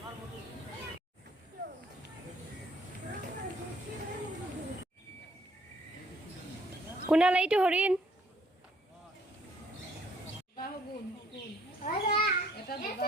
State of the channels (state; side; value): normal; both; correlation 0.63